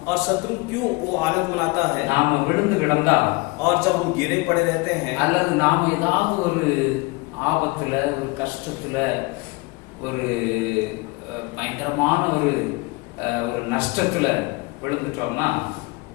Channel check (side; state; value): right; quieter; 24.9 dB